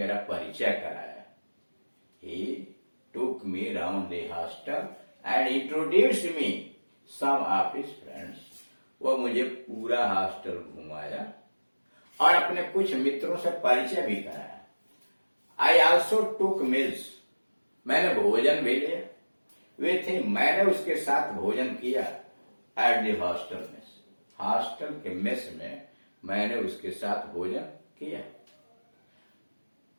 परिचय कराया। He took me round the hostel and introduced me some of his friends, वह मुझे पूरा हॉस्टल घुमाया और अपने कुछ मित्रों से परिचय भी कराया। आई ऑल्सो टुक मील्स, मैंने भोजन भी लिया। विथ हिम, मैंने उसके साथ भोजन किया। At the hostel mess, hostel के मेस में मैंने उसके साथ भोजन किया।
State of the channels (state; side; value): inverted; both; correlation -1.00